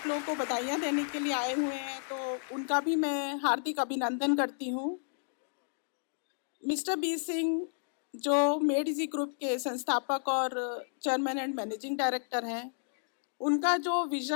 लोगों को बधाइयाँ देने के लिए आए हुए हैं, तो उनका भी मैं हार्दिक अभिनंदन करती हूँ। मिस्टर बी सिंह जो मेडिजी ग्रुप के संस्थापक और चेयरमैन एंड मैनेजिंग डायरेक्टर हैं, उनका जो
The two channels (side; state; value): right; silent; digital silence